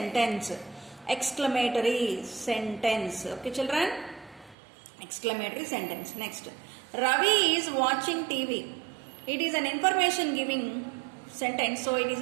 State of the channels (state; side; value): drops out; left; at 4.5 s